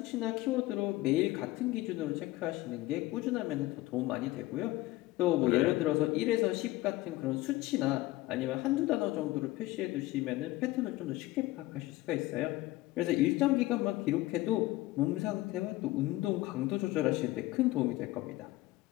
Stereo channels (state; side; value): quieter; right; 18.3 dB